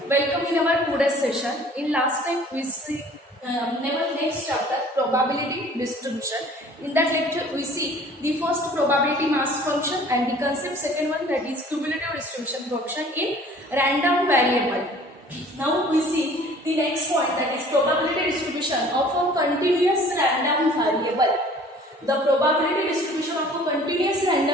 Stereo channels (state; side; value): normal; both; correlation 0.51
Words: welcome in our today's session. In last time we see our next chapter probability distribution. In that lecture we see the first probability mass function and the concept second one, that is cumulative distribution function in random variable. Now we see the next point, that is probability distribution of a continuous random variable. The probability distribution of a continuous